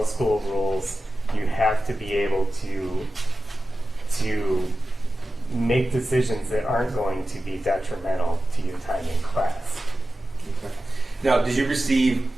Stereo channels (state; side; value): normal; both; correlation 0.94